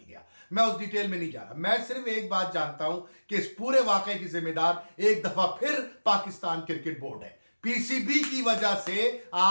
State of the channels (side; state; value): both; inverted; correlation -1.00